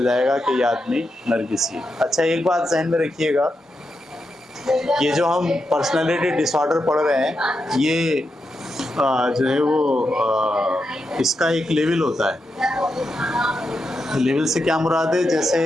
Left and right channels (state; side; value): normal; both; correlation 0.86